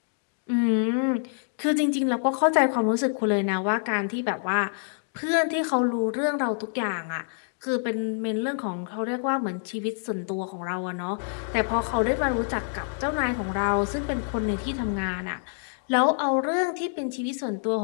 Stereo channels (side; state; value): right; silent; digital silence